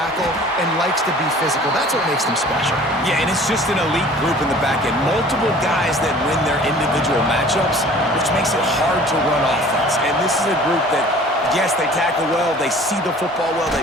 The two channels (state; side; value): normal; both; correlation 0.48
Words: and likes to be physical. That's what makes them special. Yeah, and it's just an elite group in the back end. Multiple guys that win their individual matchups, which makes it hard to run offense. And this is a group that, yes, they tackle well, they see the football well,